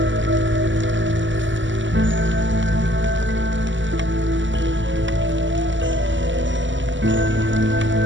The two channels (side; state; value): left; late; 0.55 ms